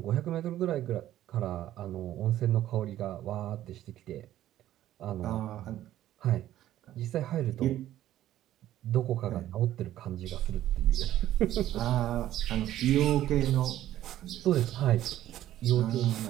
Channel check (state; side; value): quieter; left; 13.1 dB